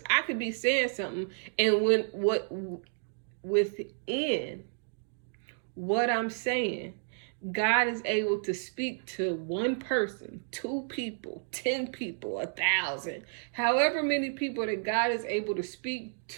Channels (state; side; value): silent; left; digital silence